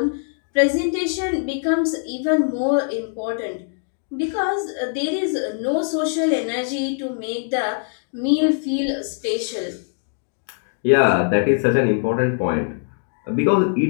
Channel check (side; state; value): right; silent; 64 dB below the other